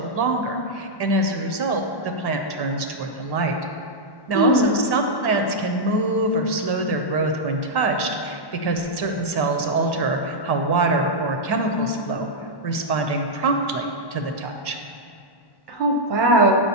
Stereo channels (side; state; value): right; late; 1.1 ms